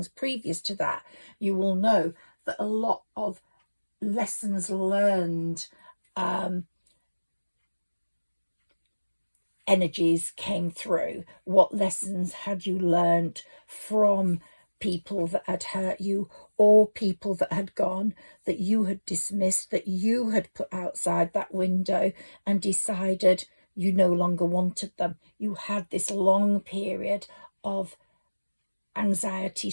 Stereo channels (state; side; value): inverted; both; correlation -1.00